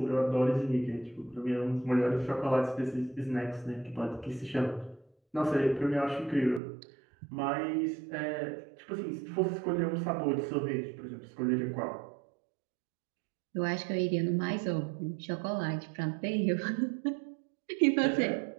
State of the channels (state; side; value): drops out; left; at 6.6 s